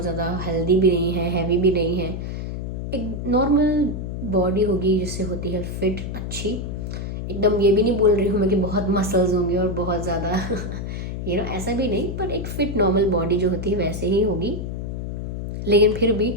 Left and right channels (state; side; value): noise; left; hum, 5 dB below the sound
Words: ज़्यादा हेल्दी भी नहीं है, हैवी भी नहीं है, एक नॉर्मल बॉडी होगी जिससे होती है फिट, अच्छी एकदम। ये भी नहीं बोल रही हूँ मैं कि बहुत मसल्स होंगे और बहुत ज़्यादा ऐसा भी नहीं, पर एक फिट नॉर्मल बॉडी जो होती है वैसे ही होगी। लेकिन फिर भी